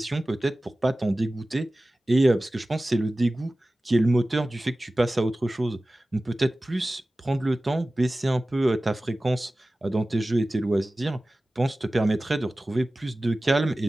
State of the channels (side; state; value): both; normal; correlation 0.97